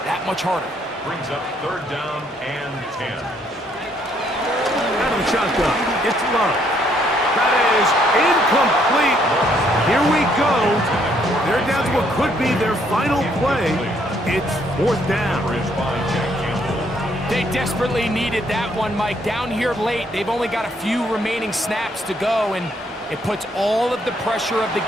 that much harder. Brings up 3rd down and 10. Out of the shotgun, it's Love. That is incomplete. Here we go. They're down to what could be their final play. It's 4th down. They desperately needed that one, Mike. Down here late, they've only got a few remaining snaps to go, and it puts all of the pressure of the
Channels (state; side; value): normal; both; correlation 0.69